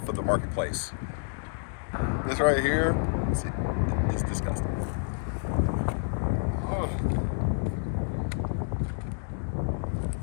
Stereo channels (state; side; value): silent; right; digital silence